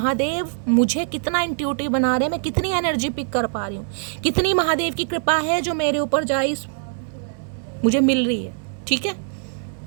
मुझे कितना इंट्यूटिव बना रहे हैं, मैं कितनी एनर्जी पिक कर पा रही हूँ, कितनी महादेव की कृपा है जो मेरे ऊपर गाइस मुझे मिल रही है। ठीक है,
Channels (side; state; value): left; silent; 63 dB below the other